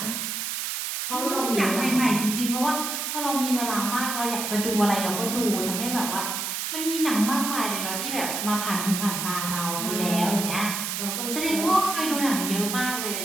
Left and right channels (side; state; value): right; noise; hiss, 3 dB below the sound